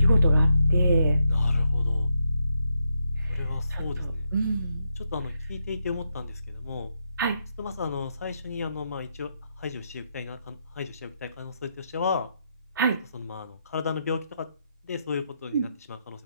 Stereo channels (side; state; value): both; inverted; correlation -0.80